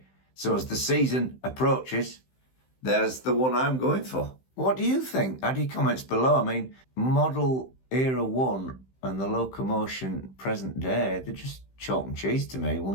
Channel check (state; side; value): late; right; 15 ms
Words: So as the season approaches, there's the one I'm going for. What do you think? Add your comments below. I mean, model Era 1 and the Locomotion present day, they're just chalk and cheese to me.